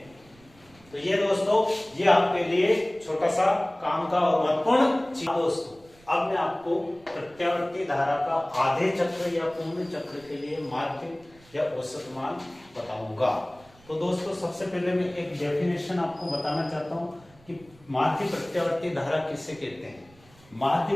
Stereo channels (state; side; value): noise; right; rumble, 27 dB below the sound